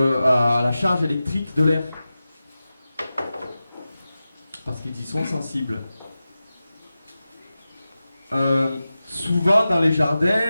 la charge électrique de l'air. Parce qu'ils y sont sensibles. Souvent dans les jardins,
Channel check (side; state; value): both; inverted; correlation -0.94